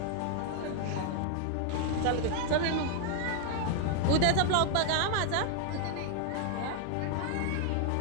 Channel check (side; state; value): both; different; correlation 0.00